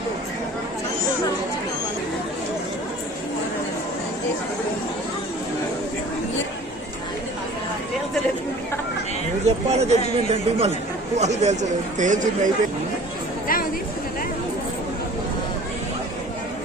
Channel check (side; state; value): both; normal; correlation 0.46